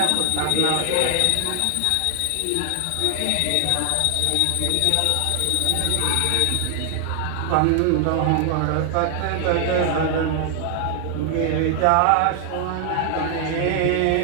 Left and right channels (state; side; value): different; both; correlation 0.00